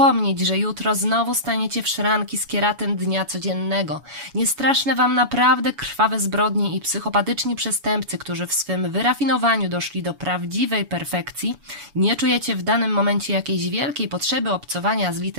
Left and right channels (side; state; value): left; late; 7.1 ms